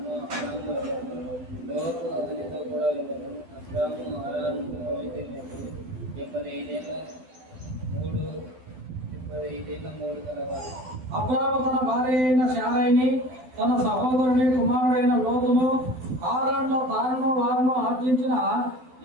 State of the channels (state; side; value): late; left; 12 ms